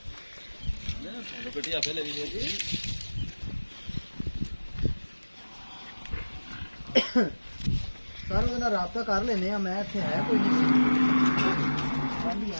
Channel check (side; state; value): both; inverted; correlation -1.00